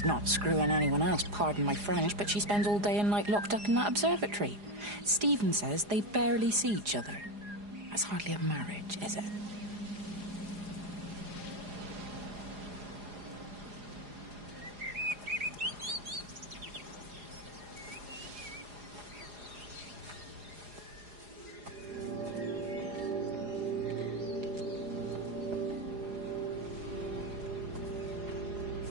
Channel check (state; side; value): late; left; 4.9 ms